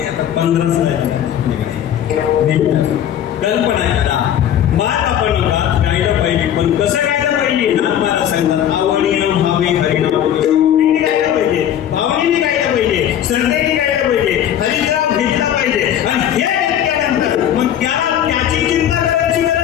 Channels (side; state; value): right; quieter; 10.3 dB